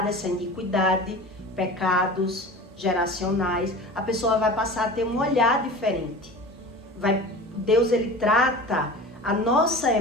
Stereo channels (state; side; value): normal; both; correlation 0.35